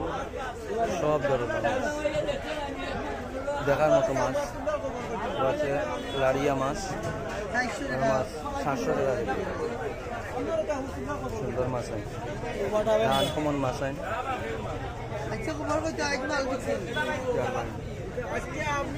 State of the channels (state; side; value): identical; both; correlation 1.00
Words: সব ধরনের মাছ দেখার মতো মাছ আছে লাড়িয়া মাছ 400 মাছ 700 টাকা কেজি সুন্দর মাছ আছে আনকমন মাছ আছে আচ্ছা খবর কইতে আজ মাল দিছেন